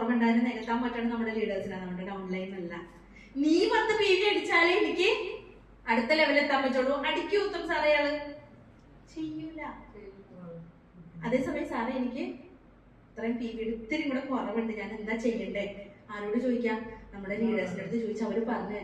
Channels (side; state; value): both; identical; correlation 1.00